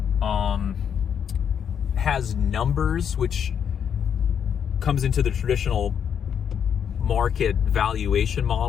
has numbers, which comes into the traditional market valuation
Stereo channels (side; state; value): right; quieter; 8.1 dB